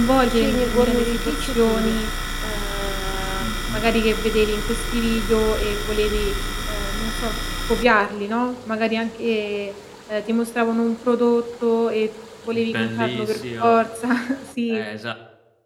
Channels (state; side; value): identical; both; correlation 1.00